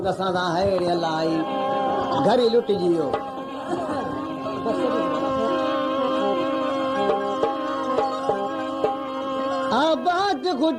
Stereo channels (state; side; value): identical; both; correlation 1.00